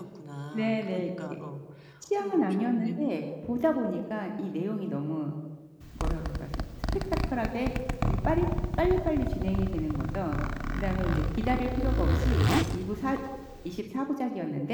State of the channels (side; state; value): both; identical; correlation 1.00